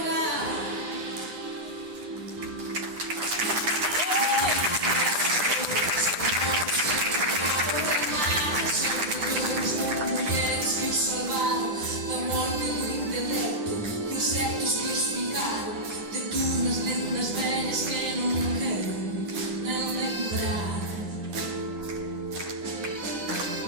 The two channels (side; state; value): left; late; 9.9 ms